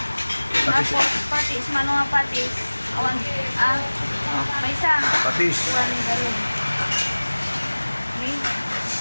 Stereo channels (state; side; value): inverted; both; correlation -1.00